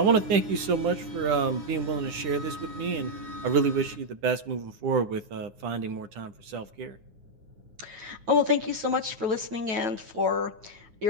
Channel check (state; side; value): late; left; 10 ms